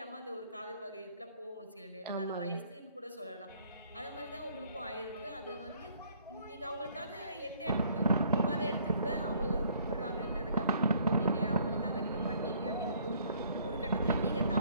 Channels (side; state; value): both; inverted; correlation -0.61